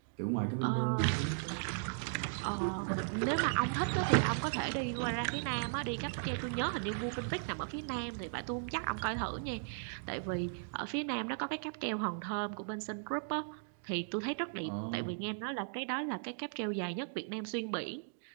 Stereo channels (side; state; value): left; silent; digital silence